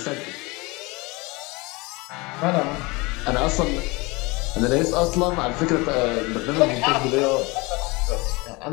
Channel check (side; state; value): right; quieter; 25.1 dB